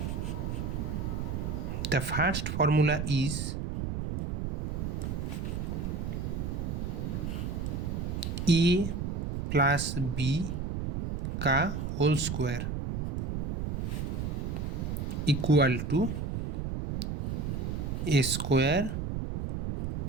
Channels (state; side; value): noise; right; rumble, 2 dB below the sound